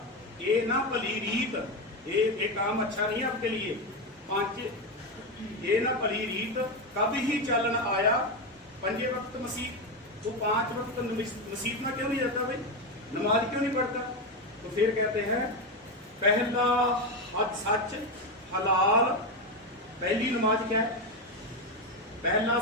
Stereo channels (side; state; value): both; normal; correlation 0.12